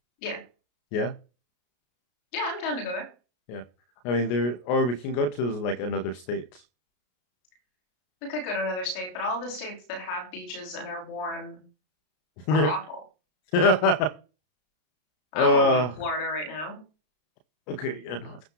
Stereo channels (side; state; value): right; late; 33 ms